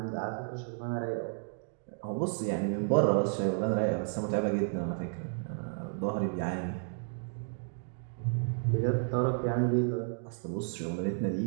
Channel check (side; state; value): left; silent; 56 dB below the other